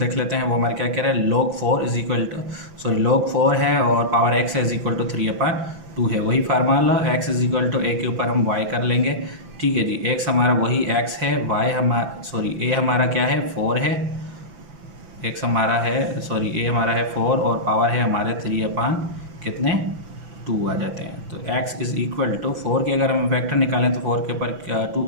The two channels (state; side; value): late; left; 6.0 ms